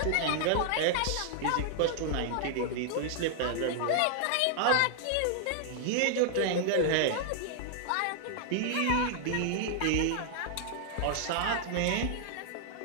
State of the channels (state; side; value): different; both; correlation -0.01